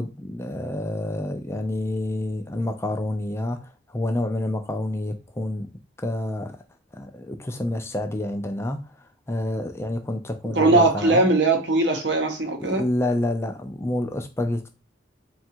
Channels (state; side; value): normal; both; correlation 0.41